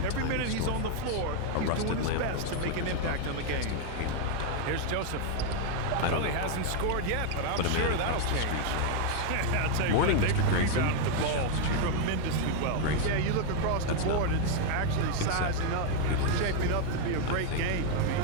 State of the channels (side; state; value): both; different; correlation 0.00